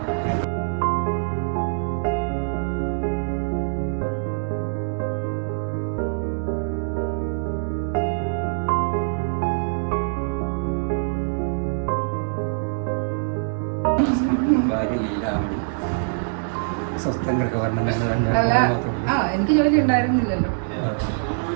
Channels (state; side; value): silent; left; digital silence